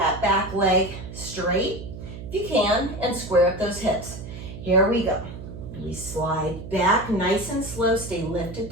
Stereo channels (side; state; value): right; noise; hum, 11 dB below the sound